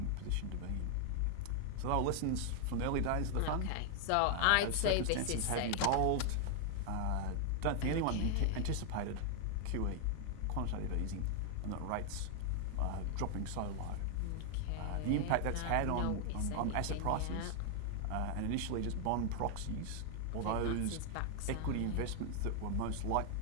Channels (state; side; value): different; both; correlation 0.00